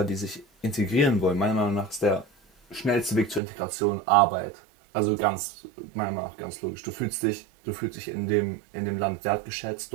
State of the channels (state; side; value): drops out; left; at 3.4 s